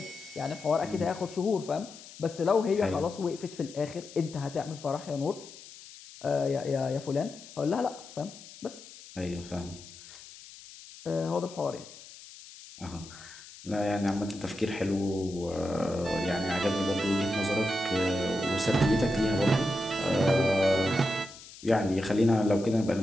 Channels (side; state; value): left; noise; hiss, 18 dB below the sound